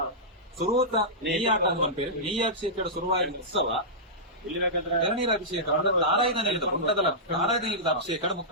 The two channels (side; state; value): both; normal; correlation -0.15